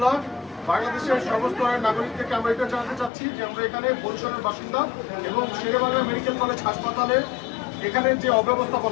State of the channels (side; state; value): right; drops out; at 3.1 s